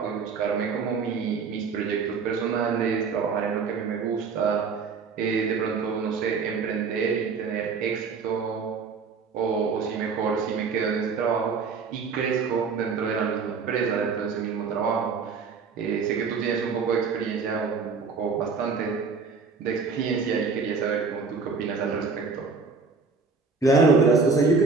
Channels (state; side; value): quieter; left; 5.0 dB